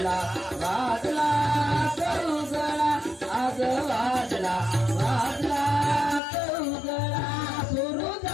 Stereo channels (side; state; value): right; drops out; at 6.2 s